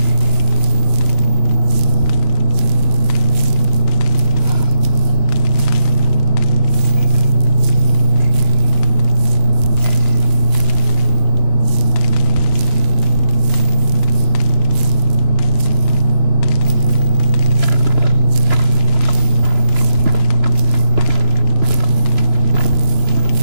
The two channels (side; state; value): left; late; 3.0 ms